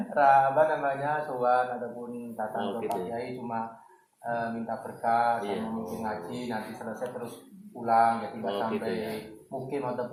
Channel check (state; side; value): identical; both; correlation 1.00